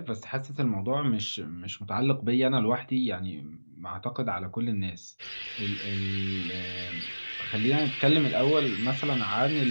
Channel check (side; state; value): both; inverted; correlation -1.00